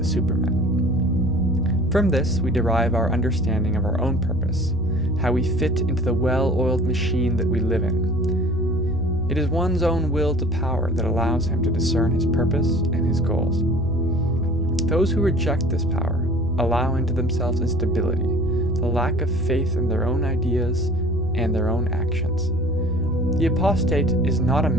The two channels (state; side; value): normal; both; correlation 0.47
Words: Superman. From this, we derive our understanding of our own purpose, how we fit into the well-oiled machine that we live in. It is one's own will to power that allows him to discern his purpose and his goals. Those who reject this power allow into themselves instability, the lack of faith in their own ideas and their own actions. The apostate is not a